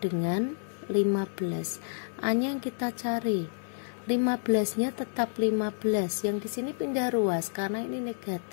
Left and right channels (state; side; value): silent; right; 58 dB below the other